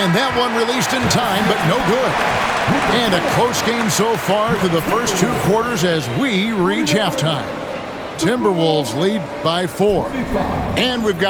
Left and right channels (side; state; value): both; identical; correlation 1.00